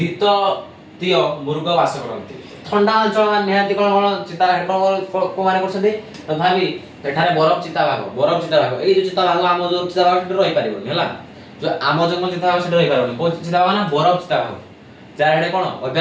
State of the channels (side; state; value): both; identical; correlation 1.00